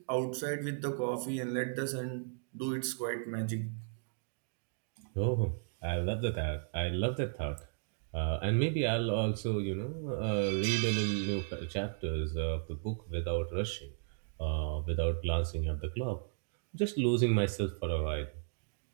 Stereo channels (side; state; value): left; silent; digital silence